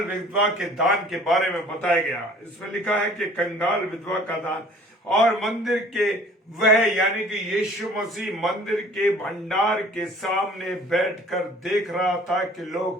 विधवा के दान के बारे में बताया गया। इसमें लिखा है कि कंगाल विधवा का दान, और मंदिर के वह यानी कि यीशु मसीह मंदिर के भंडार के सामने बैठकर देख रहा था कि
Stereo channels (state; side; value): normal; both; correlation 0.51